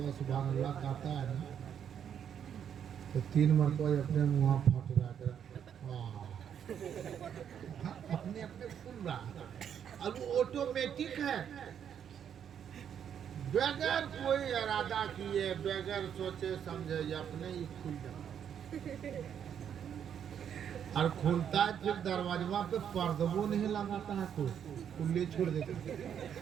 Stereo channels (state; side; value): quieter; left; 8.6 dB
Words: सुभान अल्लाह कहता है ना तो 3 मरतबा अपने मुँह फट रहा कर अपने अपने खुल रहा अब वो ऑटोमेटिक है बगैर कोई इरादा किए बगैर सोचे समझे अपने ही खुल जाता और खुलता है फिर दरवाजा पे पर्दबो नहीं लगाता है कोई खुले छोड़ देता है।